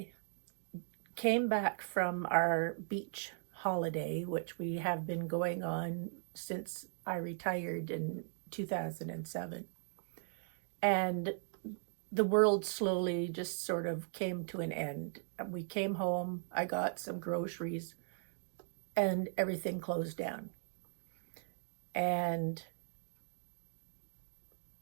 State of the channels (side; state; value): left; silent; digital silence